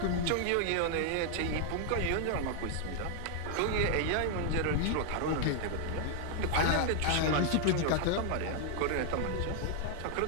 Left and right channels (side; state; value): both; different; correlation 0.00